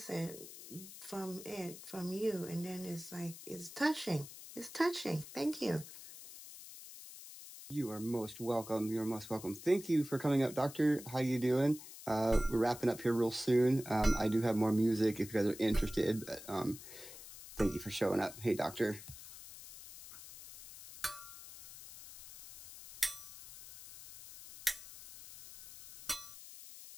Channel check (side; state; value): left; noise; hiss, 15 dB below the sound